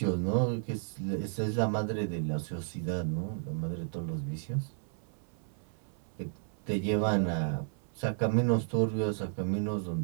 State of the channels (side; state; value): left; silent; 56 dB below the other